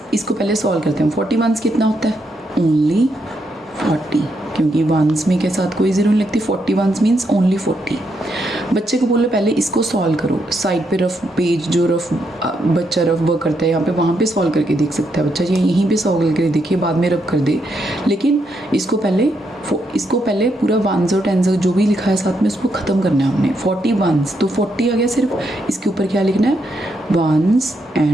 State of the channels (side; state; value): both; normal; correlation 0.79